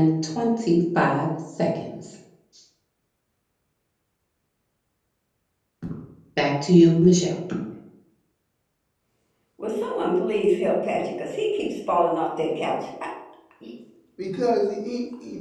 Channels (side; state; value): both; identical; correlation 1.00